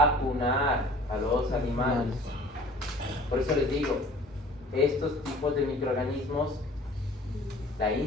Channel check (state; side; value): normal; both; correlation 0.48